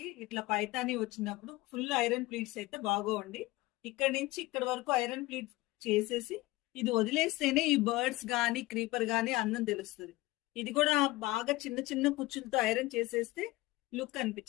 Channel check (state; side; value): quieter; right; 19.9 dB